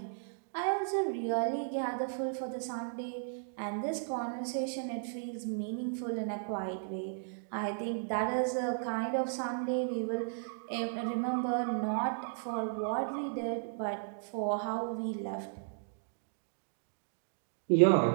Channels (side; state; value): left; silent; digital silence